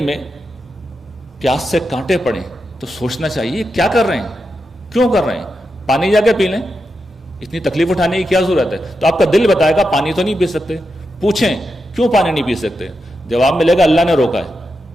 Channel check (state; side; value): normal; both; correlation 0.87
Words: میں پیاس سے کانٹے پڑیں تو سوچنا چاہیے کیا کر رہے ہیں, کیوں کر رہے ہیں. پانی جا کے پی لیں, اتنی تکلیف اٹھانے کی کیا ضرورت ہے. تو آپ کا دل بتائے گا پانی تو نہیں پی سکتے. پوچھیں کیوں پانی نہیں پی سکتے, جواب ملے گا اللہ نے روکا